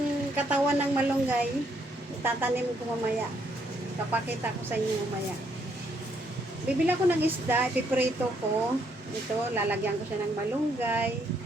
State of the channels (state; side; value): normal; both; correlation 0.72